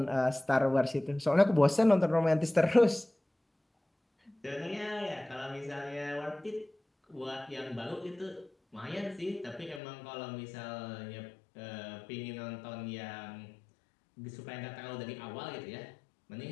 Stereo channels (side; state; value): right; drops out; at 9.8 s